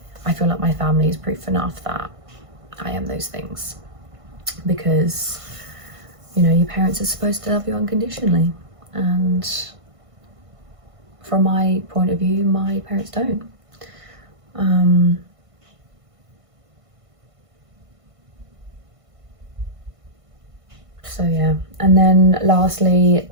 I feel like my family is proof enough that I am those things, because, you know, your parents are supposed to love you unconditionally, and from my point of view, my parents don't. So yeah, and then lastly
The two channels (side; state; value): left; late; 1.5 ms